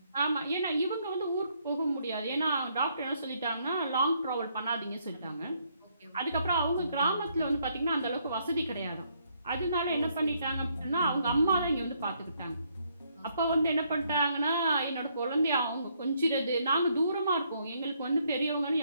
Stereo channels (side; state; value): both; inverted; correlation -0.71